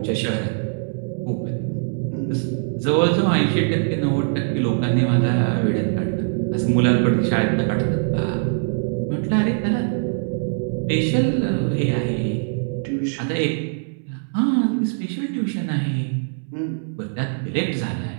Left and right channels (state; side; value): silent; left; 63 dB below the other